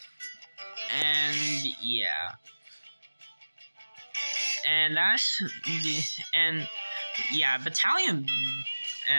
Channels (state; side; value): inverted; both; correlation -1.00